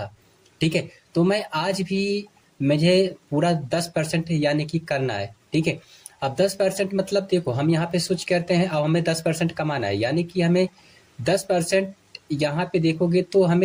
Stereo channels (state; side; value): identical; both; correlation 1.00